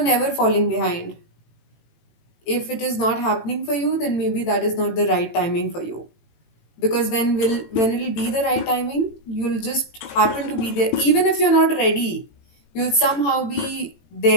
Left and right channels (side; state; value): right; late; 18 ms